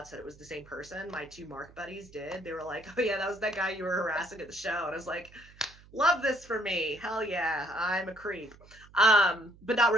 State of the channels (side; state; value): right; noise; hum, 24 dB below the sound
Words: that it was the same person. My 2 Mark buddies did. They were like, "Oh yeah, that was that guy you were harassing at the show." And I was like, "Love this for me. Hell yeah, I'm a creep." But not